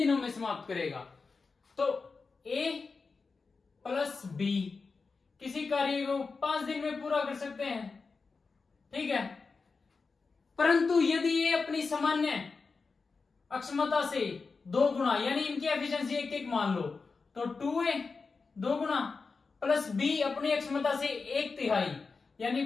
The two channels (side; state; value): right; quieter; 4.5 dB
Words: में समाप्त करेगा। तो ए प्लस बी किसी कार्य को 5 दिन में पूरा कर सकते हैं, ठीक है, परंतु यदि ये अपनी सामान्य अक्षमता से 2 गुना, यानी इनकी एफिशिएंसी 1-1 मान लो, तो 2a 2 गुना प्लस बी अपनी अक्षमता से 1/3, यानी